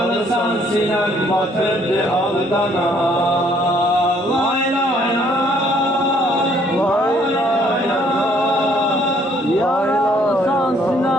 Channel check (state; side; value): normal; both; correlation 0.64